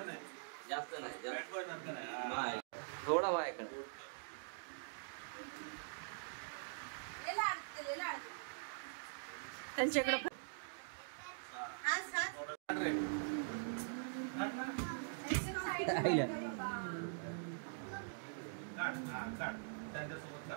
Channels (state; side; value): silent; left; digital silence